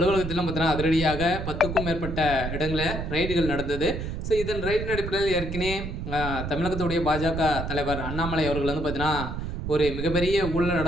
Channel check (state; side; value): noise; right; rumble, 5 dB below the sound